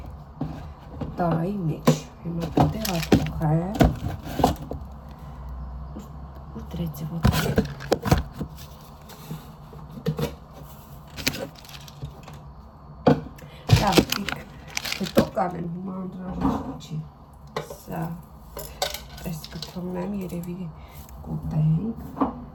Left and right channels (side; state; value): both; identical; correlation 1.00